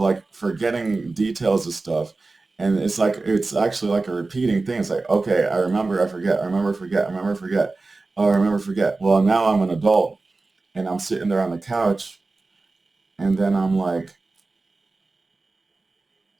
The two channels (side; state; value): left; quieter; 3.5 dB